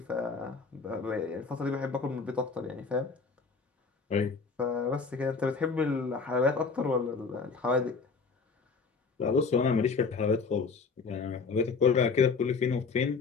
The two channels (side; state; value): right; quieter; 4.8 dB